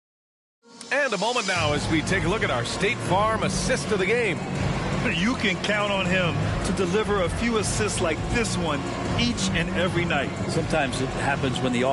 And a moment now as we take a look at our State Farm assist of the game. You can count on him to deliver a few assists like this one each and every night. Sometimes it happens when the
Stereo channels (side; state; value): both; identical; correlation 1.00